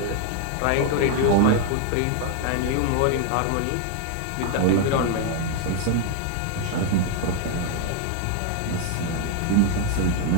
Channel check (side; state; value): both; different; correlation 0.00